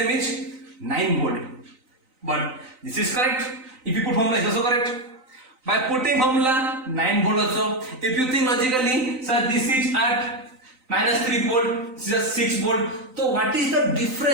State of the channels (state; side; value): late; left; 3.9 ms